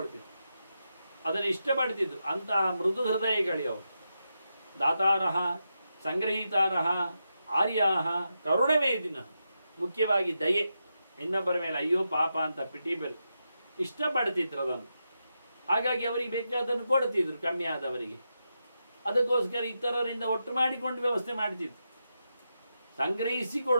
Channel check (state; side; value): inverted; both; correlation -0.87